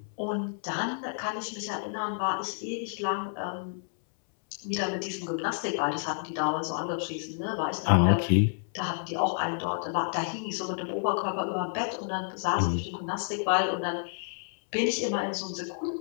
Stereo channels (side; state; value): right; silent; 58 dB below the other